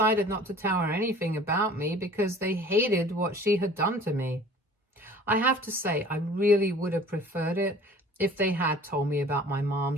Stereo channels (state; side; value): normal; both; correlation 0.47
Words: not to tell her anything about me because they hated what she had done to me. I have to say, I really would have preferred it if they had told me about my